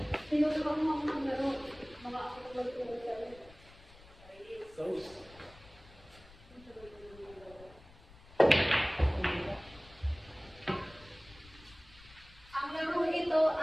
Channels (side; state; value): left; noise; rumble, 22 dB below the sound